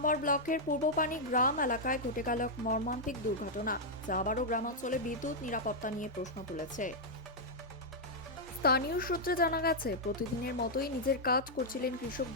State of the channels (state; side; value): normal; both; correlation -0.04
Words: ব্লকের পূর্বপানি গ্রাম এলাকায় ঘটে গেল এক মর্মান্তিক দুর্ঘটনা, যা আবারও গ্রামাঞ্চলে বিদ্যুৎ নিরাপত্তা নিয়ে প্রশ্ন তুলেছে। স্থানীয় সূত্রে জানা গেছে, প্রতিদিনের মতোই নিজের কাজ করছিলেন কৃষক